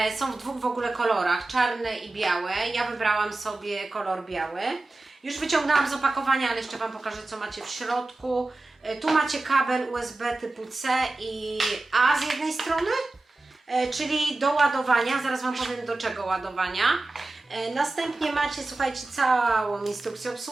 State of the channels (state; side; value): quieter; left; 3.1 dB